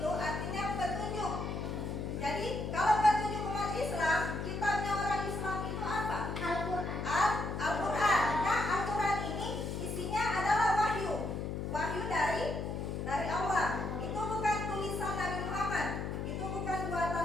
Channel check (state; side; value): noise; left; hum, 3 dB below the sound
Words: artinya petunjuk. Jadi kalau petunjuk umat Islam, kitabnya orang Islam itu apa? Al-Quran. Nah, Al-Quran ini isinya adalah wahyu. Wahyu dari Allah. Itu bukan tulisan Nabi Muhammad. Itu bukan buatan